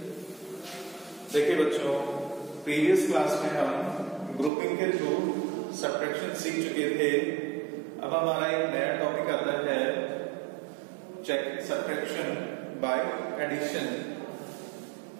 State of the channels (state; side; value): drops out; left; at 4.5 s